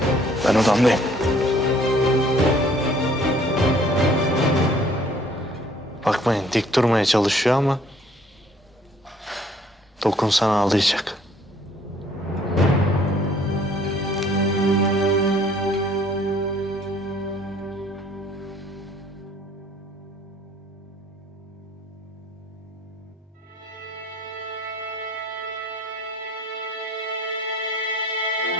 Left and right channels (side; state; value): both; normal; correlation 0.59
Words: Ben odamdayım. Bakmayın dik durmaya çalışıyor ama dokunsan ağlayacak.